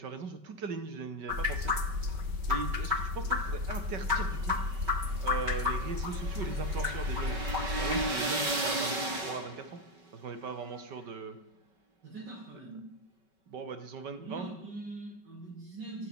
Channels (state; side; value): late; left; 5.2 ms